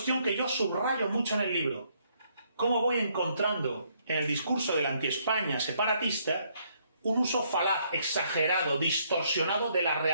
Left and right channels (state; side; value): inverted; both; correlation -0.70